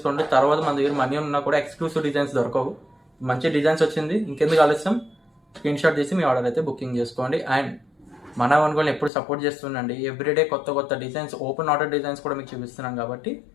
తర్వాత మన దగ్గర మనీ ఉన్నా కూడా ఎక్స్క్లూసివ్ డిజైన్స్ దొరకవు. మంచి డిజైన్స్ వచ్చింది, ఇంకెందుకు ఆలస్యం, స్క్రీన్ షాట్ తీసి మీ ఆర్డర్ అయితే బుకింగ్ చేసుకోండి. అండ్ మన వన్ ఎప్పుడు సపోర్ట్ చేస్తుండండి. ఎవ్రీడే కొత్త కొత్త డిజైన్స్, ఓపెన్ ఆర్డర్ డిజైన్స్ కూడా మీకు చూపిస్తున్నాం కాబట్టి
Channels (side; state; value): right; drops out; at 9.1 s